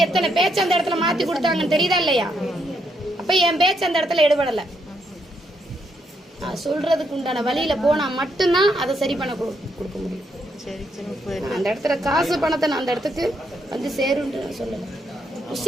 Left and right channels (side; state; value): both; normal; correlation 0.77